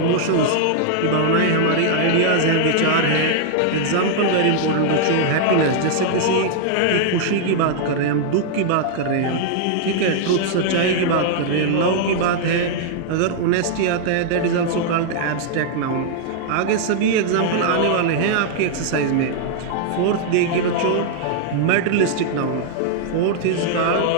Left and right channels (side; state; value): both; different; correlation -0.01